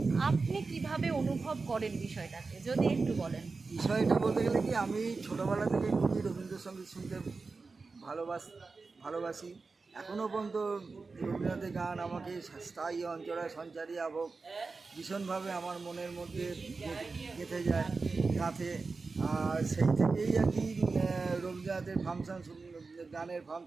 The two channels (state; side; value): quieter; left; 4.2 dB